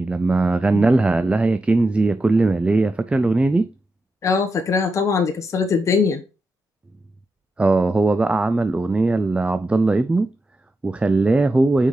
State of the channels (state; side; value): normal; both; correlation 0.88